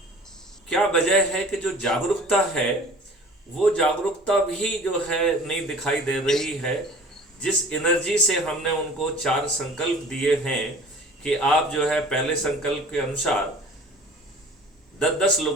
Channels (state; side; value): normal; both; correlation 0.45